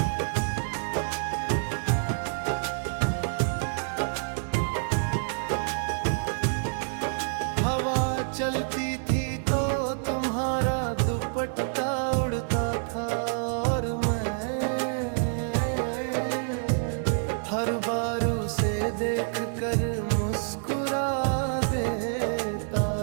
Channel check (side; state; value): left; silent; digital silence